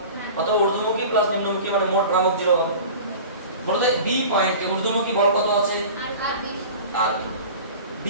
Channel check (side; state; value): both; inverted; correlation -0.38